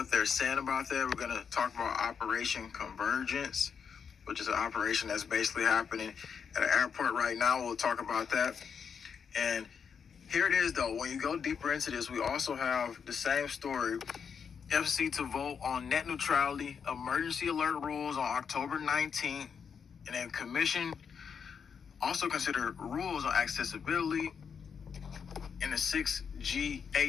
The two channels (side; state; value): right; quieter; 6.7 dB